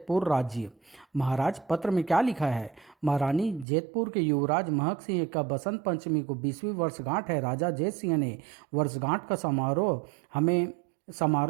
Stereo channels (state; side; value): drops out; left; at 3.7 s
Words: राज्य। महाराज, पत्र में क्या लिखा है? महारानी, जैतपुर के युवराज महक सिंह का बसंत पंचमी को 20वीं वर्षगांठ है। राजा जैत सिंह ने वर्षगांठ का समारोह